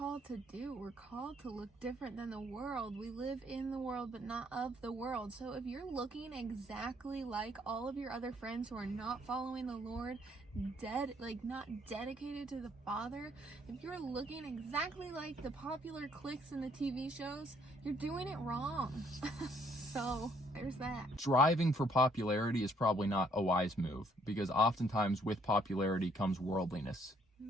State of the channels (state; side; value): normal; both; correlation 0.66